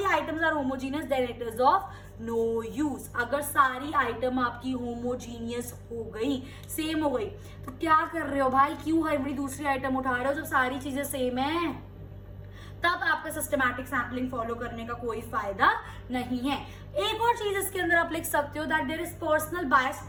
items are homogeneous then it is of no use. अगर सारी आइटम आपकी होमोजीनियस हो गई, सेम हो गई, तो क्या कर रहे हो भाई, क्यों हर बड़ी दूसरी आइटम उठा रहे हो जब सारी चीजें सेम है। तब आपका सिस्टमैटिक सैम्पलिंग फॉलो करने का कोई फायदा नहीं है। एक और चीज इसके अंदर आप लिख सकते हो that there is personal bias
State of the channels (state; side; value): identical; both; correlation 1.00